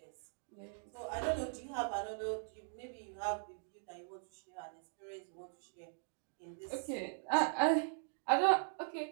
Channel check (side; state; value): left; silent; digital silence